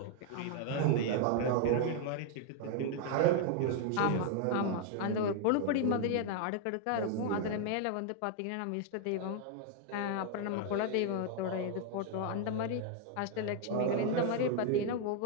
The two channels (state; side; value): different; both; correlation 0.00